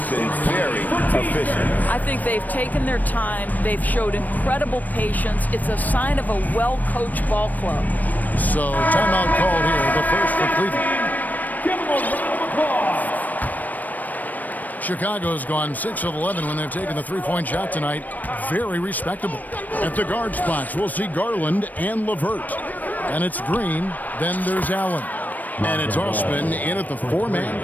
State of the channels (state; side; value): late; right; 0.083 ms